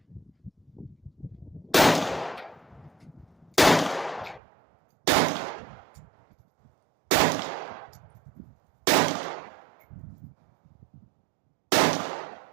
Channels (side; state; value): left; drops out; at 4.4 s